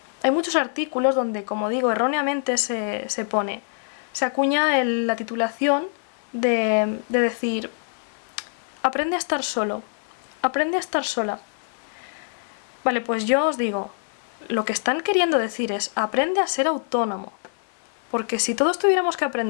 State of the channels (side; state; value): right; silent; 58 dB below the other